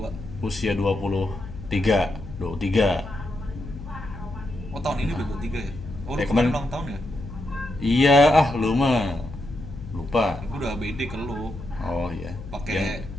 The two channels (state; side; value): noise; left; hum, 12 dB below the sound